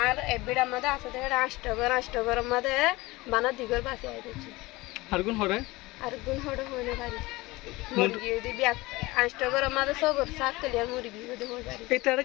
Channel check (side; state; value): right; quieter; 21.1 dB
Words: আর এবিড়ার মধ্যে আসতে হেড়ে আষ্টগর মধ্যে বানা দিগর বাসে আইতেছি আর কোন হরে আর গুণ হড়ে হয় না পারি মুরগি দিবি আষ্টগর মধ্যে সগর শাক তেলিয়া মুরগি যদি হয় পারি এটা আর